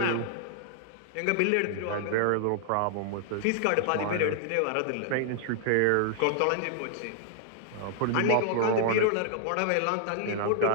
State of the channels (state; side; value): different; both; correlation 0.00